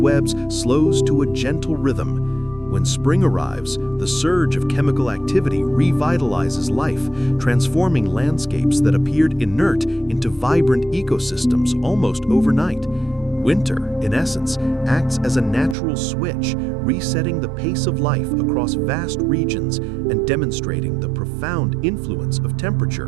slows to a gentle rhythm. When spring arrives, the surge of chemical activity revitalizes life, transforming landscapes that appeared inert into vibrant ecosystems almost overnight. Winter, in essence, acts as a natural switch, resetting the pace of life across vast regions and demonstrating the profound influence of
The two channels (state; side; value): drops out; left; at 15.8 s